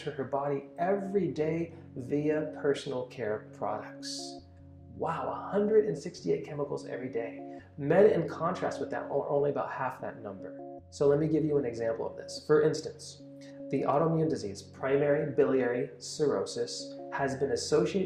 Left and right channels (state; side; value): identical; both; correlation 1.00